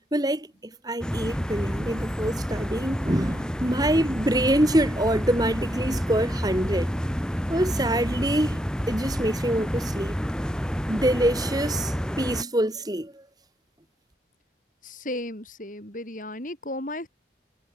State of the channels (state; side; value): normal; both; correlation 0.77